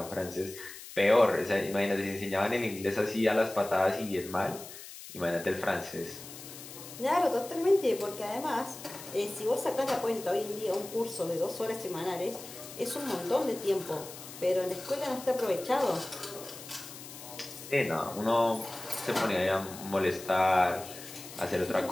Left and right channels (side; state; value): left; noise; hiss, 14 dB below the sound